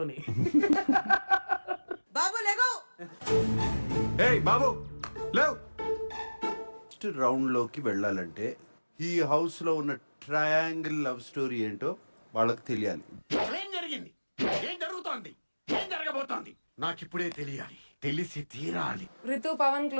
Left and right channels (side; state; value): both; inverted; correlation -1.00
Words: బాబు లేగో. ఏయ్ బాబు లేవ్. నెక్స్ట్ రౌండ్ లోకి వెళ్ళాలంటే ఈ హౌస్ లో ఉన్న ట్రయాంగిల్ లవ్ స్టోరీ ఏంటో వాళ్ళకి తెలియాలి. ఏం జరిగింది, ఏం జరుగుతోంది, ఏం జరగబోతోంది నాకిప్పుడే తెలియాలి, తెలిసి తీరాలి. రితు పవన్